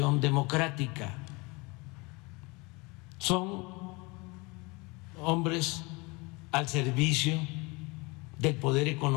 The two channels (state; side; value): quieter; right; 26.7 dB